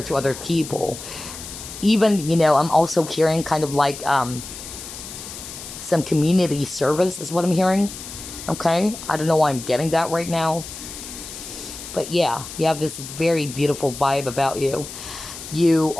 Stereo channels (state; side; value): noise; left; hiss, 11 dB below the sound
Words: to other people. Even, I'm also hearing kind of like some community service is what I'm hearing. Okay, I don't know why I'm getting that right now. But yeah, you have this very beautiful vibe about you. You